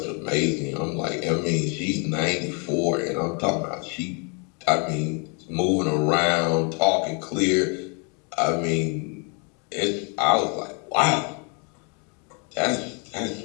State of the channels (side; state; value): right; quieter; 35.4 dB